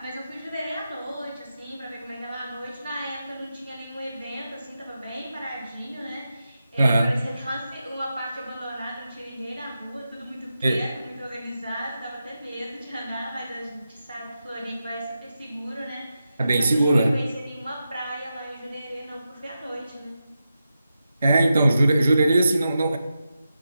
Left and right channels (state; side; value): inverted; both; correlation -0.89